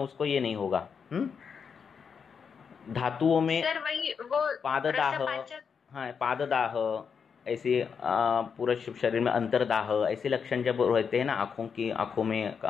ये नहीं होगा। धातुओं में सर वही वो पाददाह, पाददाह ऐसे पूरे शरीर में अंतरदाह ऐसे लक्षण जब रहते हैं ना,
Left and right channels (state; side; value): quieter; right; 6.4 dB